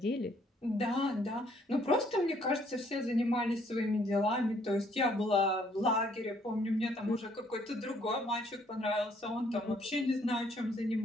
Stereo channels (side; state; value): both; normal; correlation 0.65